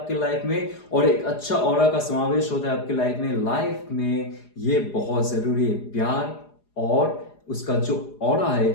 लाइफ में और एक अच्छा ऑरा का समावेश होता है आपके लाइफ में। लाइफ में ये बहुत जरूरी है, प्यार और उसका जो ऑरा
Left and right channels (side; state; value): right; late; 4.8 ms